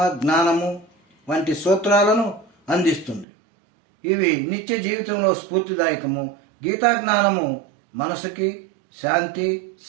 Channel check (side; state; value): left; drops out; at 3.2 s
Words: జ్ఞానము వంటి సూత్రాలను అందిస్తుంది. ఇవి నిత్య జీవితంలో స్ఫూర్తిదాయకము. గీతా జ్ఞానము మనసుకి శాంతి,